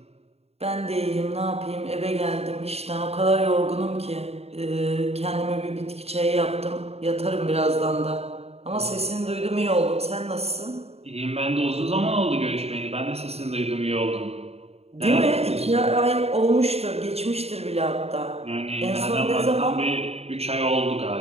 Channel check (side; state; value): left; late; 0.30 ms